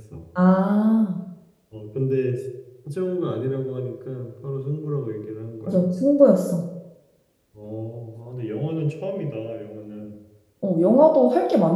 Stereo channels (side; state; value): both; identical; correlation 1.00